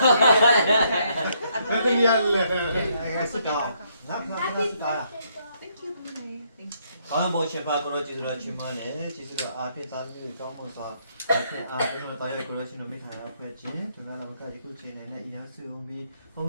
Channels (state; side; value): inverted; both; correlation -0.72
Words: Happy New Year. Sit down. Sit down. Thank you Mummy Thank you ကောင်းဖို့ရှင်ပါကိုရောကျေးဇူးတော်ချီးမွမ်းတယ်ကျေးဇူးတော်အားဖြင့်သာသမီတွေကောင်းဖို့စွာအားဖြင့်တော်ရကိုရောရှင်တော်မိခါရဖွဲ့ခြင်းဒီမှာလည်းကယခုချိန်နဲ့အရင်စုံပြီးဘုံ